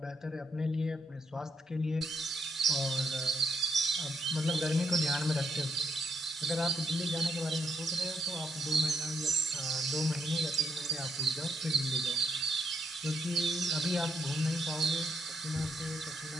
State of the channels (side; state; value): both; normal; correlation 0.76